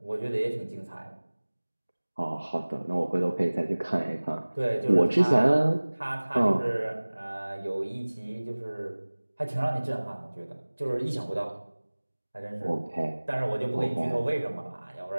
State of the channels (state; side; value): inverted; both; correlation -1.00